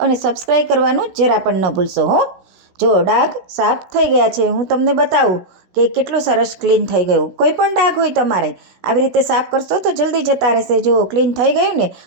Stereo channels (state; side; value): late; left; 16 ms